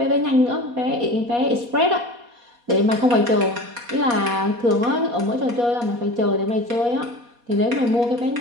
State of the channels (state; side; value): late; left; 4.2 ms